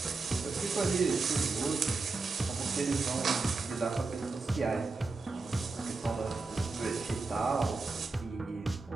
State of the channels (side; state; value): left; quieter; 3.9 dB